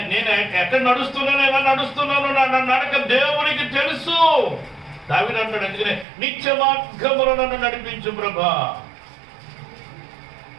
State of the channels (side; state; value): left; drops out; at 6.1 s